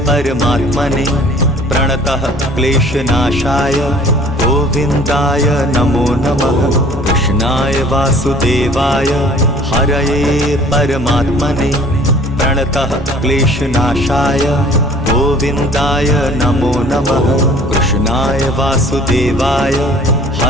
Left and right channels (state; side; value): normal; both; correlation 0.51